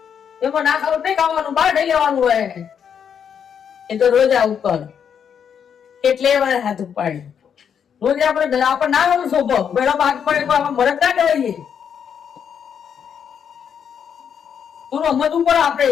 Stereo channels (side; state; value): right; quieter; 7.8 dB